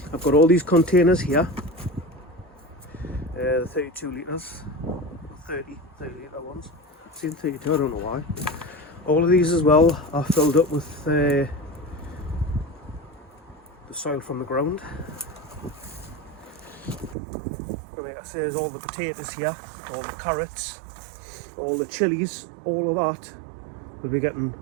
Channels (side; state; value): left; drops out; at 17.2 s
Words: I've got all these containers here, the 32 litres, 30 litre ones. I'm saying 32, I don't know why. All of these as well are filled up with the soil from the ground. And like I say, there's all the potatoes here, all the carrots, all the chilies, all of that will be getting